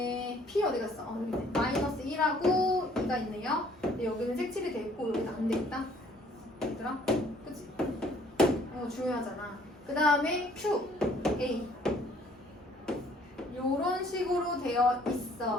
P 어디 갔어? 여기 있네. 마이너스 1하고 2가 있네요. 근데 여기는 색칠이 돼 있고 여기는 안 돼 있다. 얘들아? 그치? 중요하잖아. 그 다음에 Q, A 이런 식으로 되어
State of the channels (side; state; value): both; normal; correlation 0.60